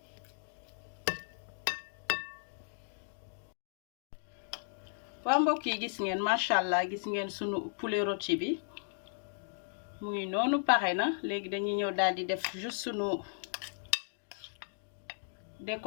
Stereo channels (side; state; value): right; silent; digital silence